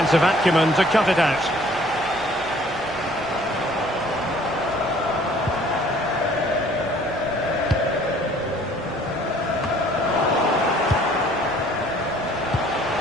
acumen to cut it out.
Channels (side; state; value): left; noise; rumble, 23 dB below the sound